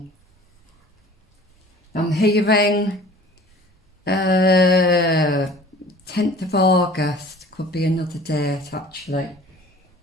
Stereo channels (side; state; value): both; normal; correlation 0.47